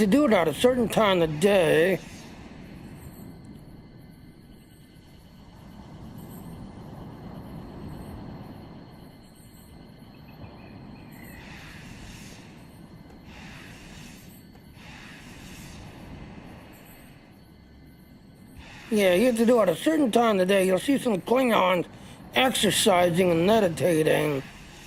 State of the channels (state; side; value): identical; both; correlation 1.00